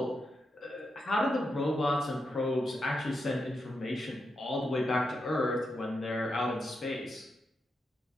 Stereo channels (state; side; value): normal; both; correlation 0.85